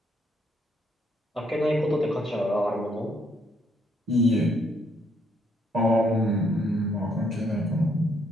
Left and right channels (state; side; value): normal; both; correlation 0.71